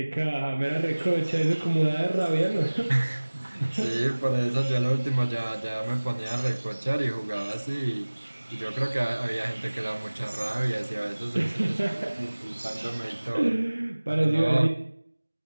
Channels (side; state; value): both; inverted; correlation -1.00